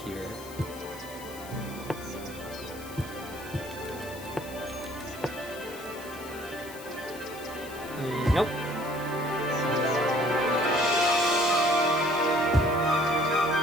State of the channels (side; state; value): left; noise; hiss, 17 dB below the sound